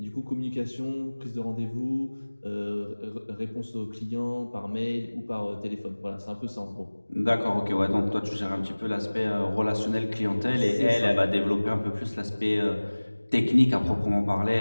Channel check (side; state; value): both; inverted; correlation -1.00